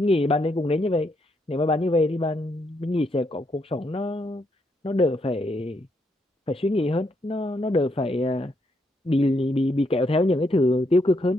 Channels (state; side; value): normal; both; correlation 0.77